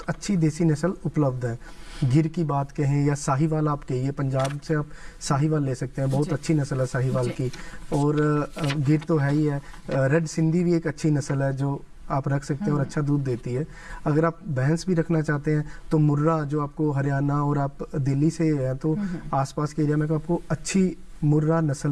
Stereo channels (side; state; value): both; identical; correlation 1.00